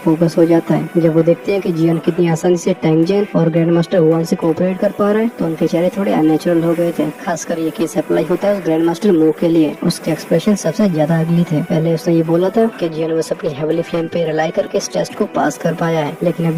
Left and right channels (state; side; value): identical; both; correlation 1.00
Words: फोकस हो जाता है। जब वो देखते हैं कि जियान कितनी आसानी से टैंग जेन और ग्रैंड मास्टर हुआन से कोऑपरेट कर पा रहे हैं तो उनके चेहरे थोड़े अननेचुरल हो गए थे। खासकर ये केस अप्लाई होता है उस ग्रैंड मास्टर मो के लिए। उसके एक्सप्रेशन सबसे ज्यादा अगली थे। पहले उसने ये बोला था कि जियान बस अपनी हेवली फ्लेम पे रिलाई करके इस टेस्ट को पास कर पाया है, लेकिन